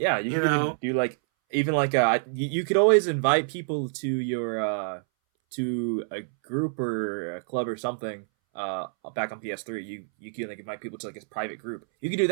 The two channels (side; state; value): left; silent; 60 dB below the other